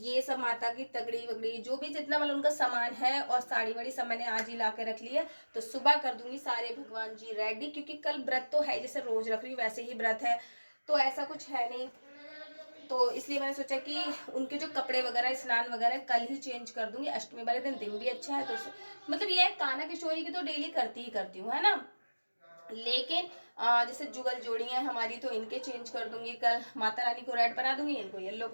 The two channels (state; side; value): inverted; both; correlation -1.00